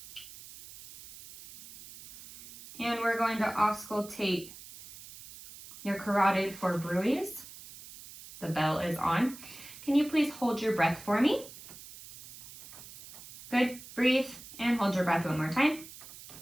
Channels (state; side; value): noise; right; hiss, 16 dB below the sound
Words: And we're going to auscultate your carotid for bruits. The bell is on. Can you please hold your breath for me? Good. Breathe and hold your breath one more time.